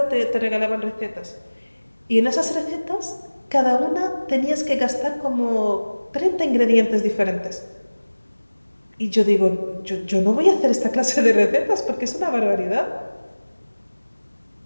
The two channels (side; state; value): both; inverted; correlation -1.00